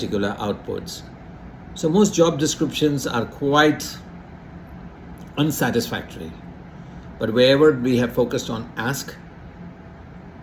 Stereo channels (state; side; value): identical; both; correlation 1.00